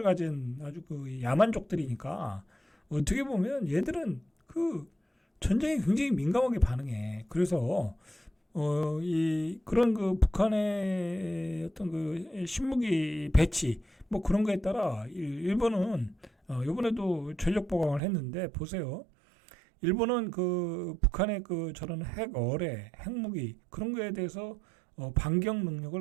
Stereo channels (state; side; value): drops out; left; at 18.0 s